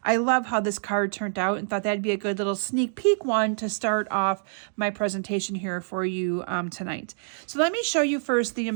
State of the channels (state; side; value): silent; left; digital silence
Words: I love how this card turned out and thought that'd be a good little sneak peek one to start off my presentation here for you tonight. So let me show you first the